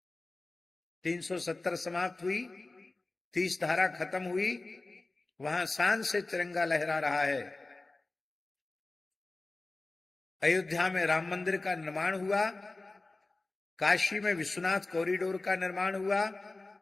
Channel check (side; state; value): right; quieter; 3.2 dB